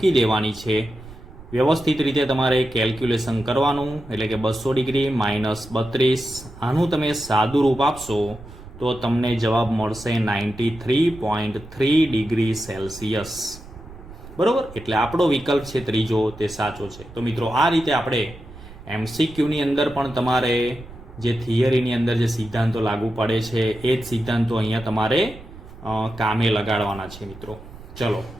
દેવાની છે. વ્યવસ્થિત રીતે તમારે કેલ્ક્યુલેશન કરવાનું, એટલે કે 200 ડિગ્રી -32. આનું તમે સાદું રૂપ આપશો તો તમને જવાબ મળશે 93.3 ડિગ્રી સેલ્સિયસ, બરોબર. એટલે આપણો વિકલ્પ છે ત્રીજો તે સાચો છે. તો મિત્રો આ રીતે આપણે MCQની અંદર પણ તમારે જે થિયરીની અંદર જે સિદ્ધાંતો લાગુ પડે છે એ જ સિદ્ધાંતો અહીંયા તમારે કામે લગાડવાના છે મિત્રો. ચલો,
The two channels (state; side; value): noise; right; rumble, 17 dB below the sound